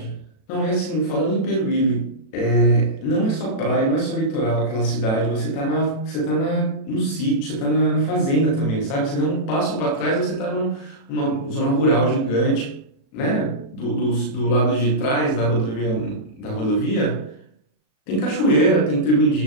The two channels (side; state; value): right; late; 36 ms